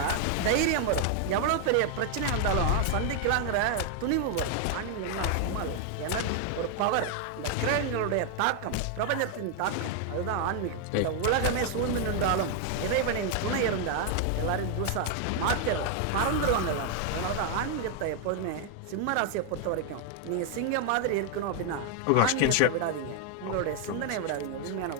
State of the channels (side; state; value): both; different; correlation 0.00